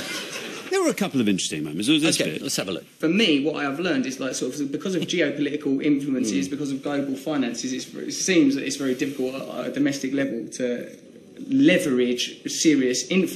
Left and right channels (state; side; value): identical; both; correlation 1.00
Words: There were a couple of interesting moments. Okay, let's have a look. For me, what I've learned is like sort of because of geopolitical influences, because of global finances, it seems that it's very difficult at a domestic level to leverage serious